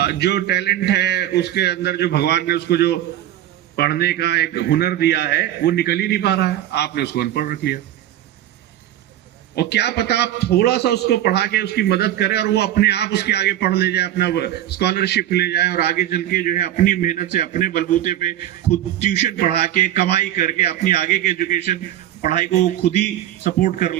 जो टैलेंट है, उसके अंदर जो भगवान ने उसको जो पढ़ने का एक हुनर दिया है, वो निकल ही नहीं पा रहा है। आपने उसको अनपढ़ रख लिया। और क्या पता आप थोड़ा सा उसको पढ़ा के उसकी मदद करें और वो अपने आप उसके आगे पढ़ ले जाए, अपना स्कॉलरशिप ले जाए और आगे चल के जो है अपनी मेहनत से, अपने बलबूते पे खुद ट्यूशन पढ़ा के, कमाई करके अपनी आगे की एजुकेशन, पढ़ाई को खुद ही सपोर्ट कर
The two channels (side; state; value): left; quieter; 12.4 dB